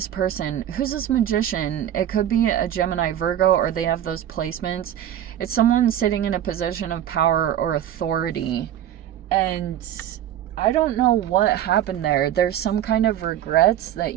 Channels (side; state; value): left; quieter; 11.1 dB